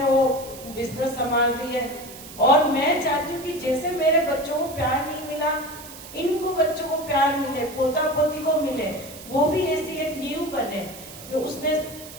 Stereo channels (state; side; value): noise; right; hiss, 15 dB below the sound